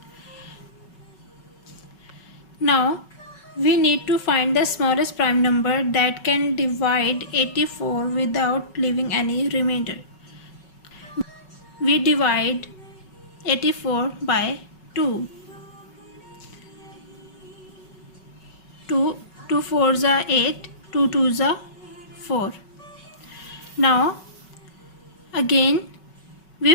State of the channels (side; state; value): right; late; 5.3 ms